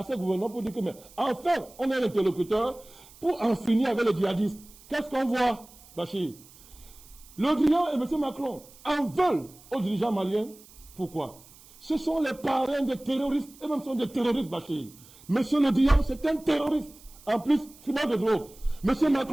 ce gouvernement pour dire que, mais enfin, on est un interlocuteur pour en finir avec les djihadistes. Qu'est-ce qu'on voit, Bachir? Le Drian et M. Macron en veulent aux dirigeants maliens. Pourquoi? Ce sont les parrains des terroristes, et même sont des terroristes, Bachir. M. Le Drian, c'est un terroriste. En plus, fumeur de drogue. M.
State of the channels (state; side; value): noise; right; hiss, 23 dB below the sound